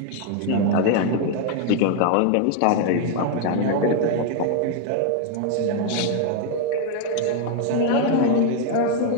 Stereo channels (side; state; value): both; different; correlation 0.00